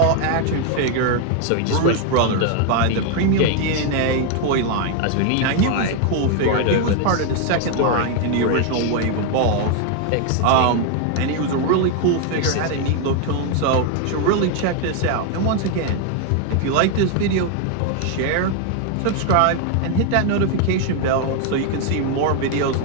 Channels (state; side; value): different; both; correlation 0.01